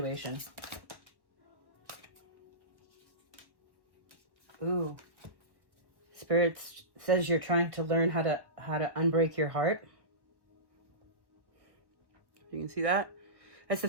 Ooh. Spirit says you're trying to learn how to unbreak your heart. You can see that? That's the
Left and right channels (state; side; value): late; left; 1.1 ms